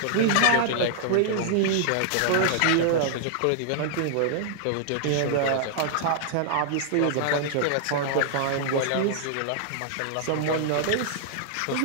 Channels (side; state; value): both; different; correlation -0.01